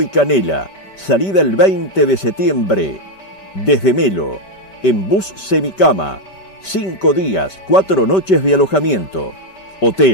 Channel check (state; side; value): late; right; 5.2 ms